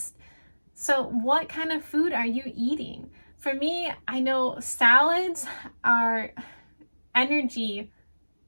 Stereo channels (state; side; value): inverted; both; correlation -1.00